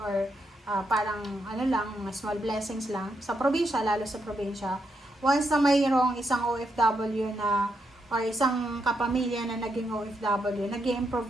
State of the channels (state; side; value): normal; both; correlation 0.81